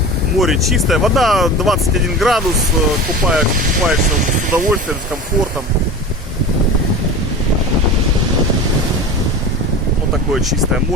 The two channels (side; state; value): both; normal; correlation 0.33